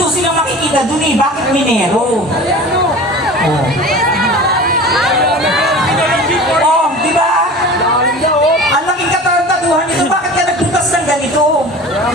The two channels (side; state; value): both; normal; correlation 0.37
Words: silang makikita dun Bakit minero? Oh. Oh, diba? Ang laking katarantaduhan nito. Bakit ka nagbutas ng ganito?